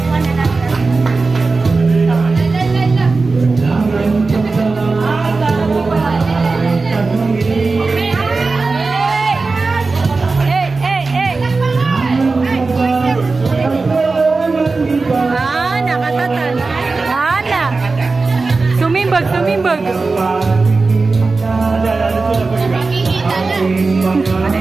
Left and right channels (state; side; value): quieter; left; 3.9 dB